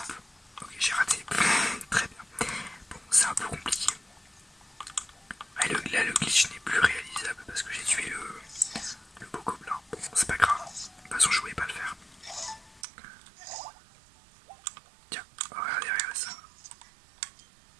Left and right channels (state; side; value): drops out; left; at 12.8 s